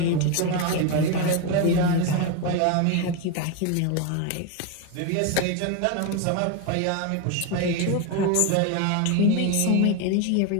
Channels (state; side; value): different; both; correlation 0.02